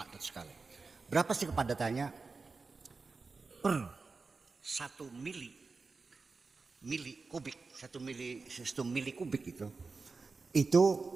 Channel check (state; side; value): quieter; left; 4.2 dB